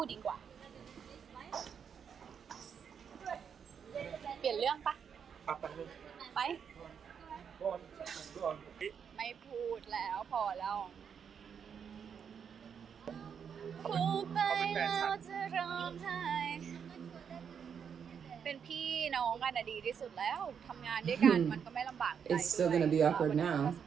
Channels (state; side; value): quieter; left; 7.3 dB